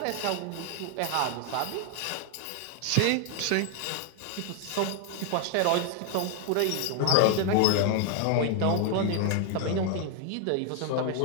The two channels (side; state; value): both; different; correlation 0.00